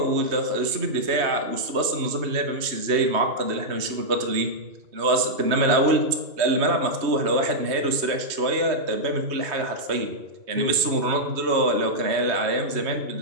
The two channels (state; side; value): late; left; 3.1 ms